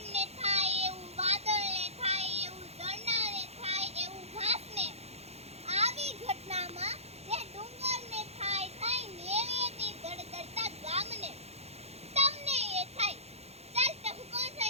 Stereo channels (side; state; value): left; late; 0.31 ms